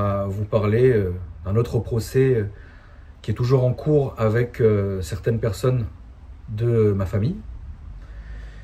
vous parler d'un autre procès qui est toujours en cours avec certaines personnes de ma famille,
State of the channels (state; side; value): identical; both; correlation 1.00